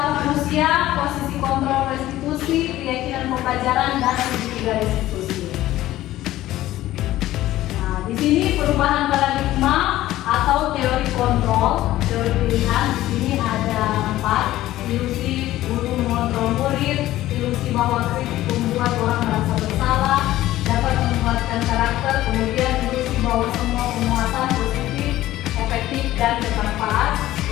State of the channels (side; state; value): right; quieter; 15.1 dB